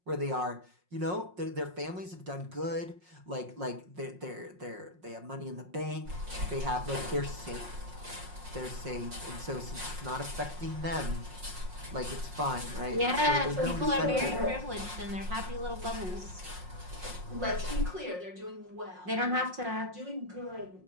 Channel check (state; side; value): late; left; 5.5 ms